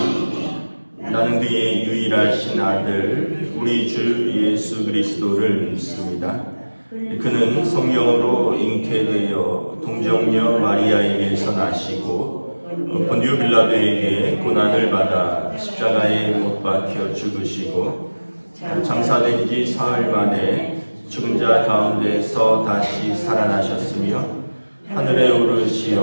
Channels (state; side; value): inverted; both; correlation -1.00